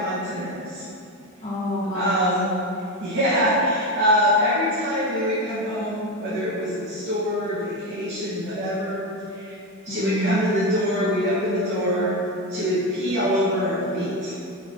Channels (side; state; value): both; normal; correlation 0.15